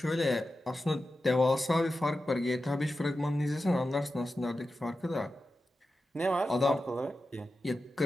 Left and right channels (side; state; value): both; normal; correlation 0.92